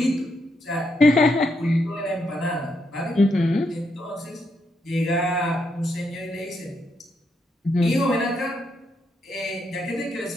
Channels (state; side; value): normal; both; correlation 0.79